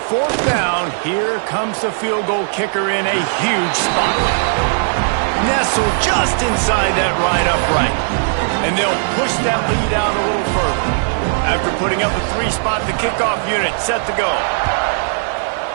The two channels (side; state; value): left; silent; digital silence